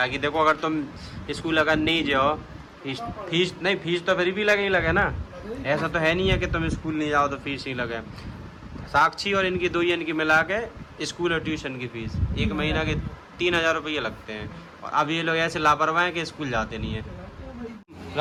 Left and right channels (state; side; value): identical; both; correlation 1.00